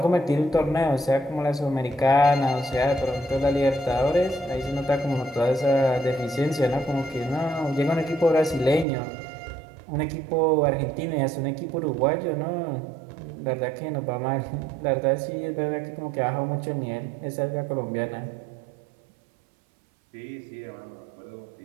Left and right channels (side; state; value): left; drops out; at 8.8 s